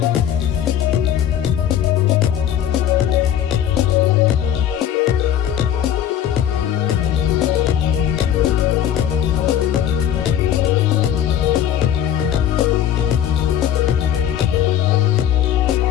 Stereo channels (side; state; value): right; quieter; 10.3 dB